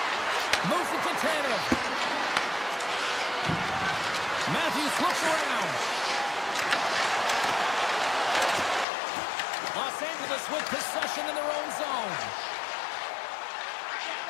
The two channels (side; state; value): right; drops out; at 8.8 s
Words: Moves it to Tanev. Matthews looks around. Los Angeles with possession in their own zone.